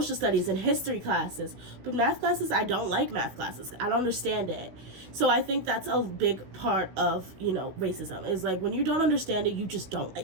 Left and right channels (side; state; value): left; late; 16 ms